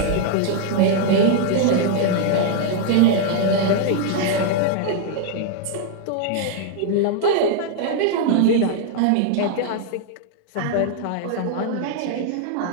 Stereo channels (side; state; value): both; different; correlation 0.00